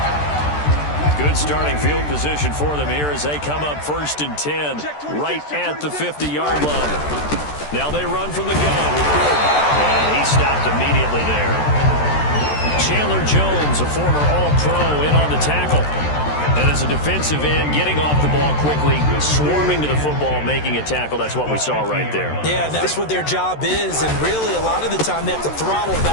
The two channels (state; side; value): late; right; 13 ms